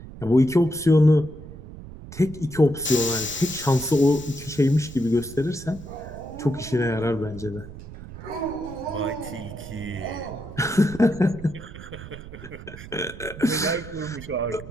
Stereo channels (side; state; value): right; noise; rumble, 14 dB below the sound